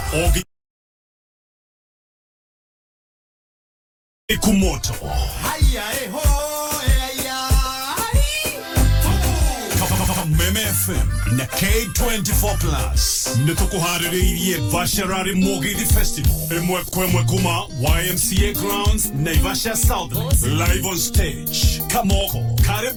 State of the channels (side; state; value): both; identical; correlation 1.00